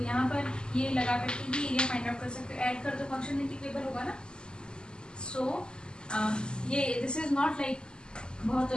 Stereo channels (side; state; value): right; late; 0.047 ms